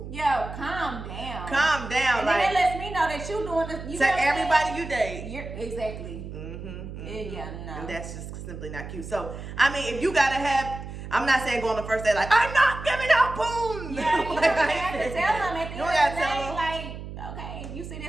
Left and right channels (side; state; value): right; noise; hum, 10 dB below the sound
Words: Yo, calm down. Calm down. And like, then it lets me know that you doing this. You to know what I'm everybody saying? you date. You're exactly. Yeah, no. And that's just simply not cute. So, I mean, if you gotta have, I'm not saying go on the first day like, I'm not giving out poom. Yeah, you Like, don't have to tell them at the You end don't of the gotta tell day, them. like, okay, if you see